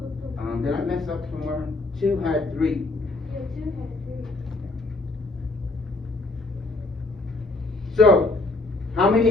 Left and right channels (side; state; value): right; quieter; 3.0 dB